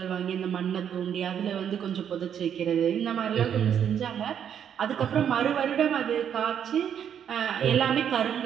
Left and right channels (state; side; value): quieter; left; 8.8 dB